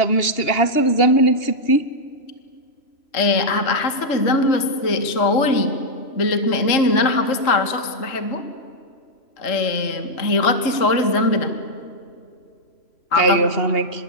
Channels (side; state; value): right; late; 3.7 ms